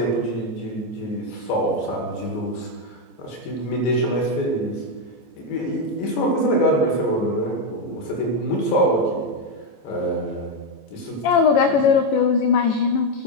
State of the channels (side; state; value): right; late; 14 ms